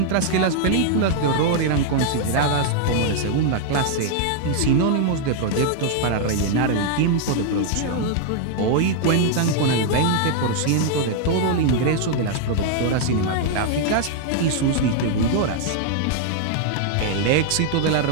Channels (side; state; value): both; different; correlation 0.00